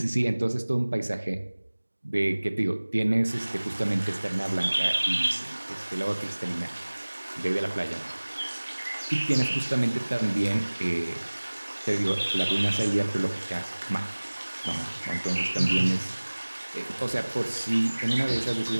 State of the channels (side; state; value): both; inverted; correlation -1.00